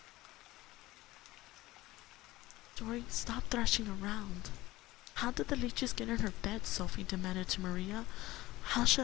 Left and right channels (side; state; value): right; quieter; 18.1 dB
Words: Joy, stop thrashing around. How did the leeches get in her bed? Sophie demanded to Maria. How